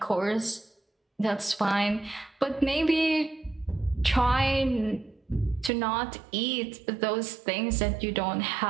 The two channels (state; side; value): drops out; left; at 5.7 s